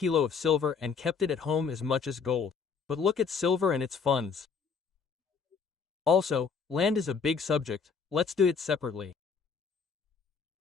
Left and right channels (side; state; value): right; quieter; 5.7 dB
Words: of silver and kept it at home as much as gold. But look at silver and its funds. Also, land is a big subject. Let's do it separately.